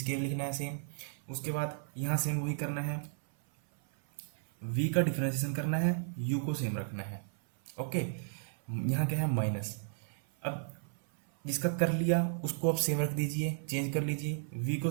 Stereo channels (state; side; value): silent; left; 55 dB below the other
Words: लिखना है सेम। उसके बाद यहाँ सेम वही करना है, v का डिफरेंशिएशन करना है, u को सेम रखना है, ओके। यहाँ क्या है, माइनस। अब जिसका कर लिया उसको आप सेम रख दीजिए, चेंज कर लीजिए, v को